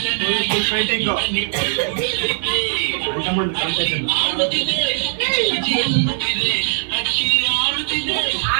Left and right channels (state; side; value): silent; left; digital silence